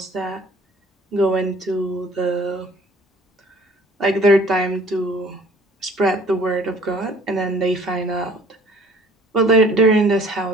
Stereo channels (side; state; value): both; normal; correlation 0.53